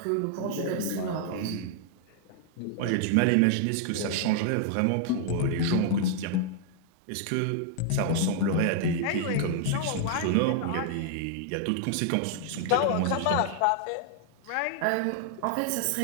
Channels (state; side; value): different; both; correlation 0.00